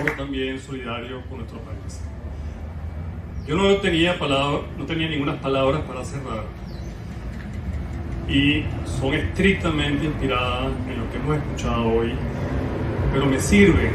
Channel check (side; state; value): both; identical; correlation 1.00